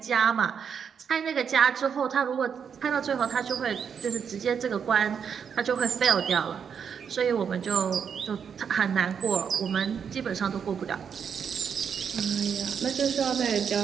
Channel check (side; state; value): left; quieter; 7.2 dB